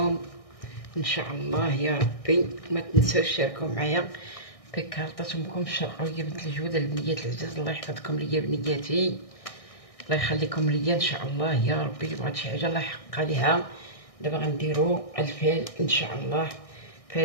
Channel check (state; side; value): late; right; 1.6 ms